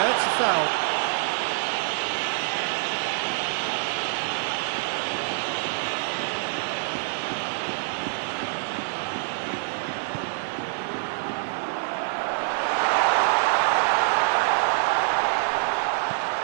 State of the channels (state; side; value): silent; left; 61 dB below the other